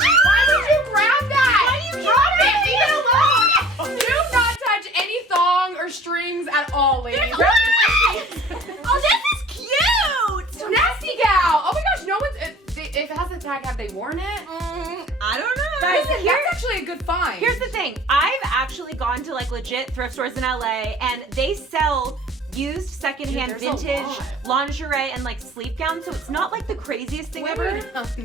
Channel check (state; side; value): normal; both; correlation 0.48